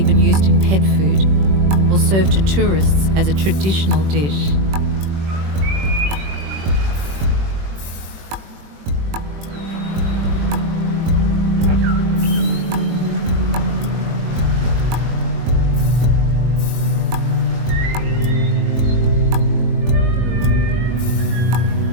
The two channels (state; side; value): late; left; 21 ms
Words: used in pet food or served to tourists as a traditional dish.